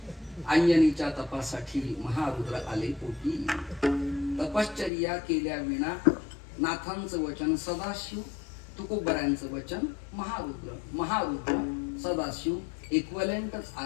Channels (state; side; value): drops out; right; at 4.9 s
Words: अंजनीच्या तपासाठी महारुद्र आले पोटी. तपश्चर्या केल्या विना नाथांचं वचन सदाशिव, तुकोबऱ्यांचं वचन महारुद्र. महारुद्र सदाशिव इक्वलेंटच